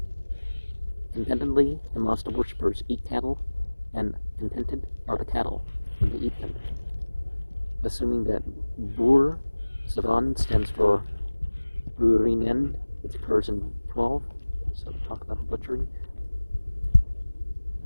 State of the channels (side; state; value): both; inverted; correlation -1.00